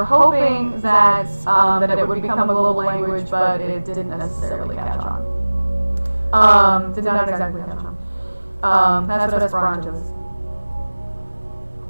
hoping that it would become a global language, but it didn't necessarily catch on. Did not exactly catch on. That's what Esperanto is.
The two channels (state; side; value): inverted; both; correlation -1.00